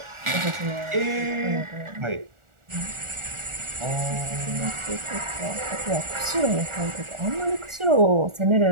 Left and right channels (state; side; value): late; left; 1.4 ms